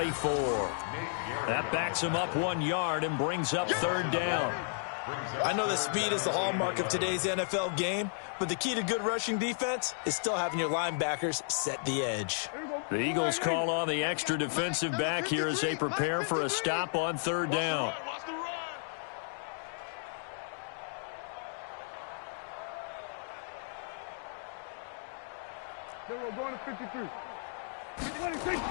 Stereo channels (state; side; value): silent; right; digital silence